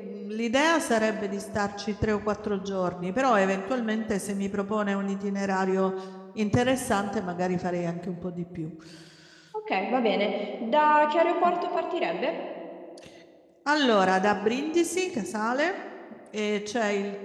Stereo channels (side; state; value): both; identical; correlation 1.00